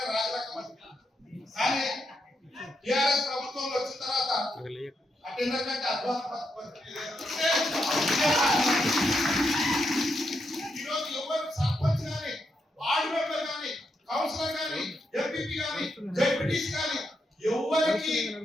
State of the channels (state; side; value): normal; both; correlation 0.82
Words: రాజరకం. కానీ టిఆర్ఎస్ ప్రభుత్వంలో వచ్చిన తర్వాత అటెండర్ కంటే అధ్వాన ఈరోజు ఎవరు సర్పంచ్ కానీ వార్డు మెంబర్ కానీ కౌన్సిలర్ కానీ ఎంపీపీ కానీ జెడ్పీటీసీ కానీ ఎవరికి